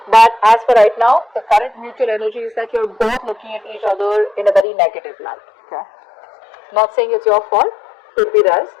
But as for right now, the current mutual energy is that you're both looking at each other in a very negative light, okay? Not saying it's your fault, could be theirs.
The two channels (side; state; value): right; drops out; at 4.7 s